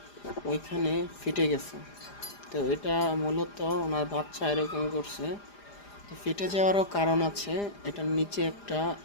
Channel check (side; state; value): right; late; 4.9 ms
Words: ওইখানে ফেটে গেছে। তো এটা মূলত ওনার বাচ্চা এরকম করছে। তো ফেটে যাওয়ারও কারণ আছে, এটার নিচে একটা